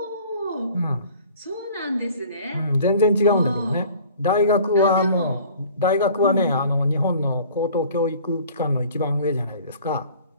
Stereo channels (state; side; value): inverted; both; correlation -0.49